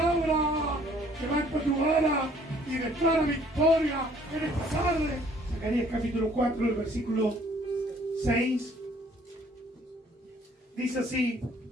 Levanta tu vara y declara victoria en esta tarde. Zacarías capítulo 4, el versículo 6. Dice así:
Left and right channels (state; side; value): normal; both; correlation 0.59